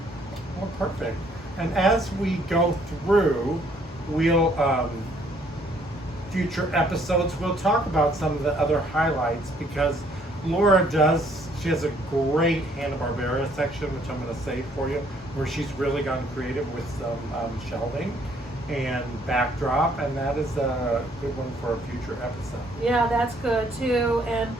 Well, perfect. And as we go through, we'll future episodes we'll talk about some of the other highlights, because Laura she has a great Hanna-Barbera section, which I'm going to save for you, where she's really gotten creative with some shelving and backdrop, and that is a good one for a future episode. Yeah, that's good too. And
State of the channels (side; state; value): both; normal; correlation 0.64